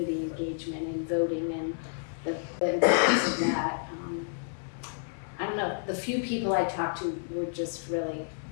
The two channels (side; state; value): right; silent; digital silence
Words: engagement and voting and the importance of that. I don't know, the few people I talked to were just really,